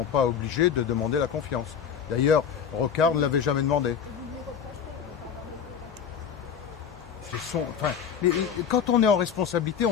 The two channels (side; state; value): right; quieter; 7.7 dB